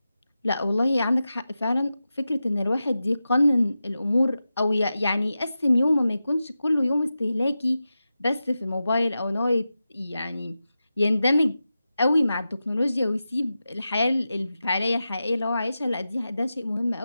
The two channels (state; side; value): inverted; both; correlation -0.92